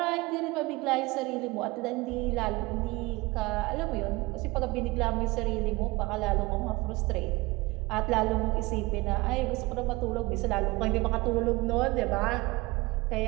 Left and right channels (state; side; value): quieter; left; 22.8 dB